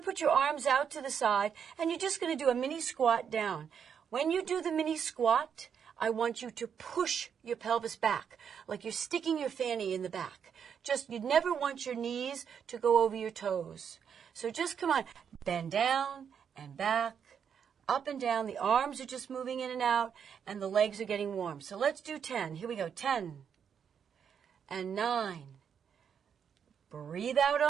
put your arms out to the side, and you're just going to do a mini squat down. When you do the mini squat, I want you to push your pelvis back, like you're sticking your fanny in the back. You never want your knees to go over your toes. So just come on, bend down and back, up and down. The arms are just moving in and out, and the legs are getting warm. So let's do 10. Here we go. 10 and 9. Breathe out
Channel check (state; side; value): quieter; left; 7.5 dB